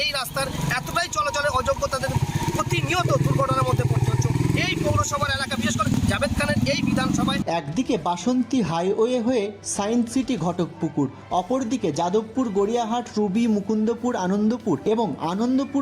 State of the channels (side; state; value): both; identical; correlation 1.00